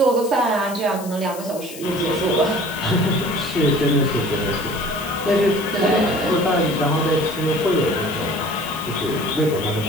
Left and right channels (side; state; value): left; noise; hiss, 15 dB below the sound